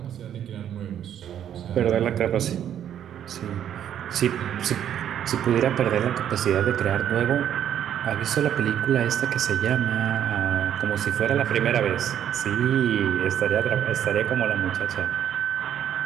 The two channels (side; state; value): left; quieter; 10.0 dB